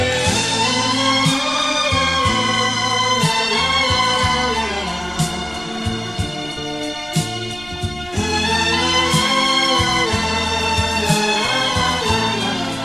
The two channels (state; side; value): noise; right; rumble, 20 dB below the sound